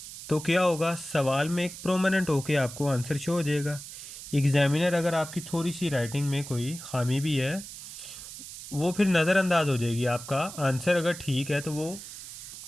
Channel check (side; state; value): right; noise; hiss, 12 dB below the sound